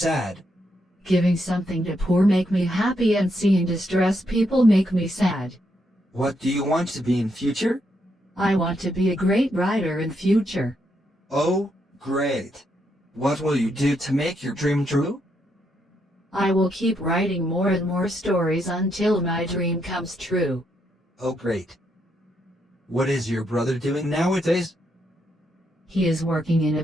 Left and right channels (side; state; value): both; normal; correlation 0.78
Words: Giving something to poor make me happy and seeing distressed people make me sad. What do you want to be in future? I want to be a great writer in future. Oh, great. What will you do to make your dream true? I will keep writing more and more stories until my dream comes true. Oh, great. What is your brother doing nowadays? He is working in a